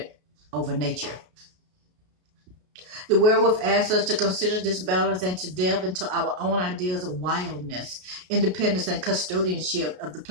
over nature. The werewolf asks us to consider this balance and to delve into our own ideas of wildness, independence, and custodianship of the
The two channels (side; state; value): left; late; 33 ms